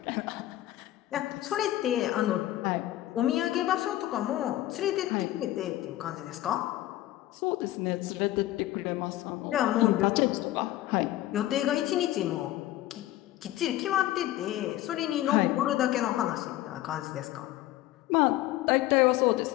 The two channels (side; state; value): right; quieter; 15.1 dB